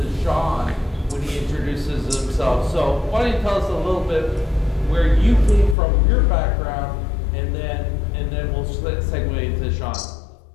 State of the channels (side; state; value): right; drops out; at 5.8 s